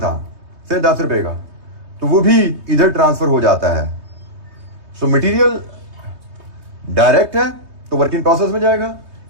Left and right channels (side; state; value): left; late; 3.2 ms